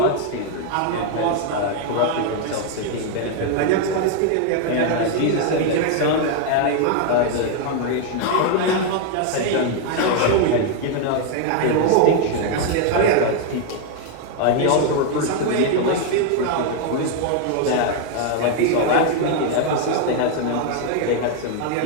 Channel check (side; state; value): both; different; correlation 0.01